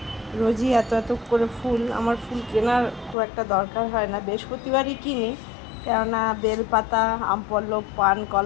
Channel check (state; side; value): drops out; right; at 3.2 s